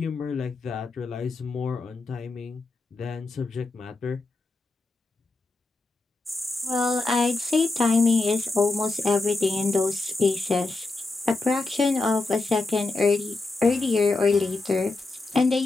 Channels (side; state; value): right; quieter; 3.3 dB